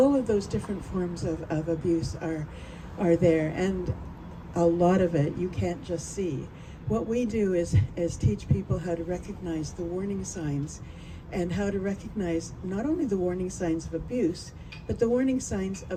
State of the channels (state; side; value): identical; both; correlation 1.00